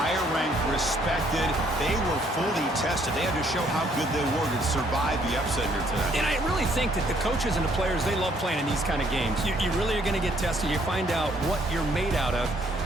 ranked, respected. They were fully tested. They had to show how good they were to survive the upset here tonight. And I really think that the coaches and the players, they love playing in these kind of games. You really are going to get tested. You find out what you're made out of.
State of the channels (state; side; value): normal; both; correlation 0.66